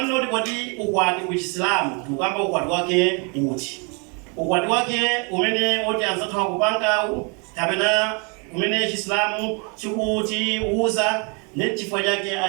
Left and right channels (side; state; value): left; quieter; 34.1 dB